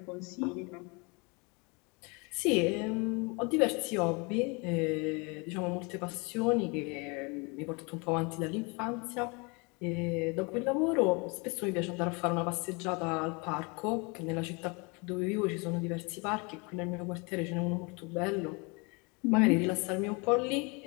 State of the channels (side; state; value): right; quieter; 29.9 dB